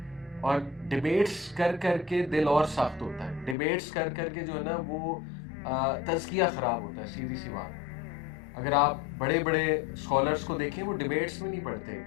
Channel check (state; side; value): drops out; right; at 3.6 s